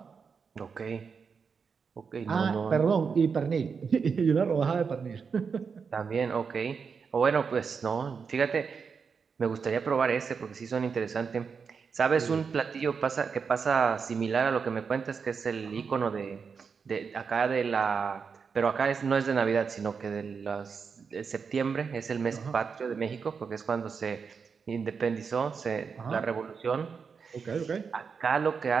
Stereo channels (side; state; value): left; quieter; 5.8 dB